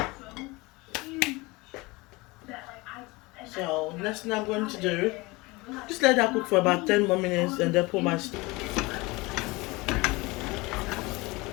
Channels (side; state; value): right; quieter; 23.2 dB